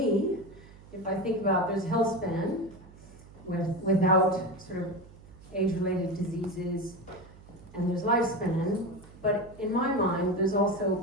if I think about there's health span without sort of age-related diseases, and there's lifespan, but in my mind, there's also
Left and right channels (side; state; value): right; noise; hum, 21 dB below the sound